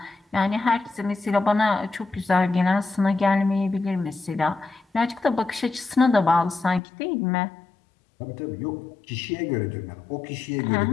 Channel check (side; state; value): right; drops out; at 6.8 s